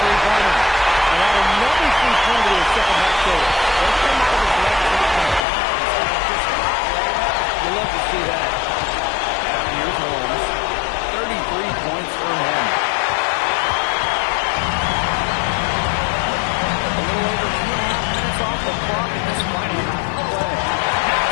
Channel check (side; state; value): right; drops out; at 5.5 s